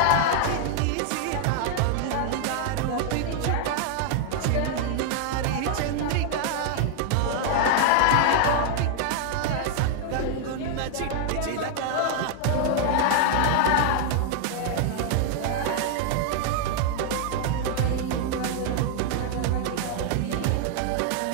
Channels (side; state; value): both; different; correlation 0.00